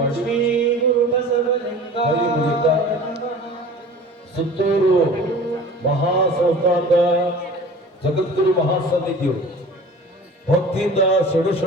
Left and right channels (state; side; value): normal; both; correlation 0.41